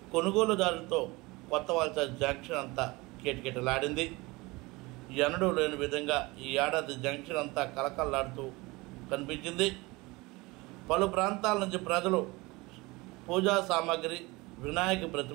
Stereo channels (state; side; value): quieter; left; 23.1 dB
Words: కొనుగోలుదారులతో కొత్తవలస జంక్షన్ అంతా కిటకిటలాడింది. ఎన్నడూ లేని విధంగా ఈ ఏడాది జంక్షన్ అంతా కలకల్లాడుతూ కనిపించింది. పలు ప్రాంతాల నుంచి ప్రజలు పూజా సామాగ్రి, వినాయక